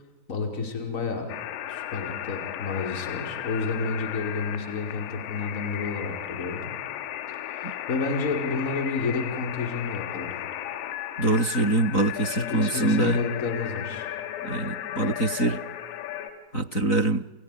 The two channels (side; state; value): right; late; 3.9 ms